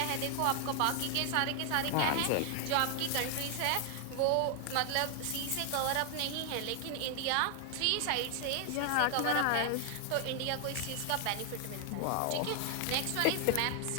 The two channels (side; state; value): both; different; correlation 0.00